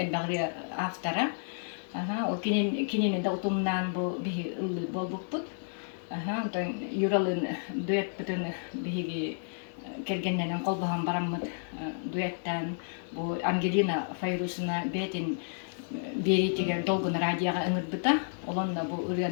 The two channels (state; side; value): silent; right; 57 dB below the other